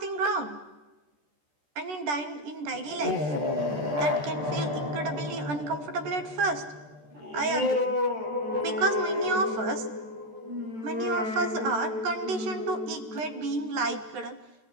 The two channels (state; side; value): late; left; 14 ms